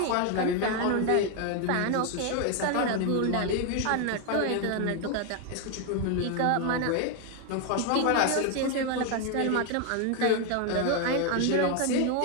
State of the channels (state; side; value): different; both; correlation 0.01